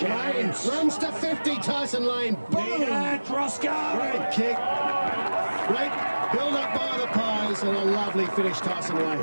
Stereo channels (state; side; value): inverted; both; correlation -1.00